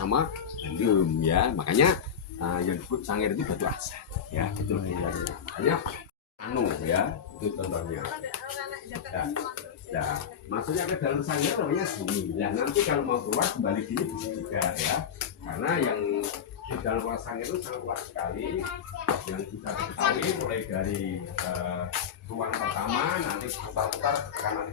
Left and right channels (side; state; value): right; quieter; 7.8 dB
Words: Bandung ya. Makanya yang disebut Sangir itu batu asa ya. Itu makanya ya, itu contohnya. Nah, maksudnya ke dalam Sangir namanya sini. Ya nanti kalau mau keluar kembali sini bisa juga ya. Karena yang di dalam ruang Sangir itu sangat luas sekali. Yang bisa diketahui mulai dari ruang pertama nanti putar-putar karena nanti